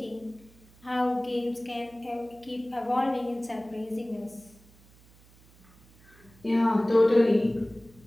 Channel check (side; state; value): right; noise; hum, 26 dB below the sound